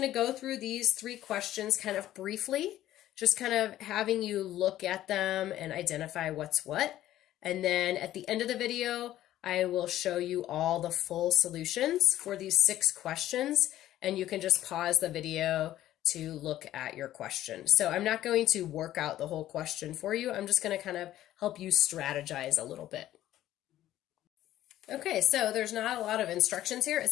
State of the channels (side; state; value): right; quieter; 13.5 dB